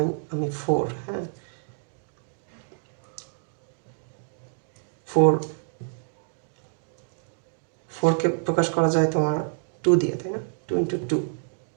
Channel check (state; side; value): silent; left; digital silence